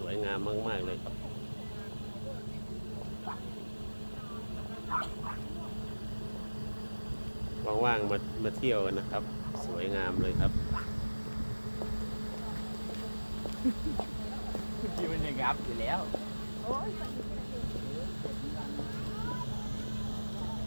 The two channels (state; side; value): inverted; both; correlation -1.00